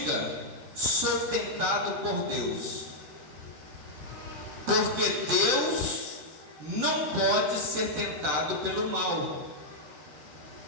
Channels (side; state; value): left; late; 13 ms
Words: sou tentado por Deus, porque Deus não pode ser tentado pelo mal,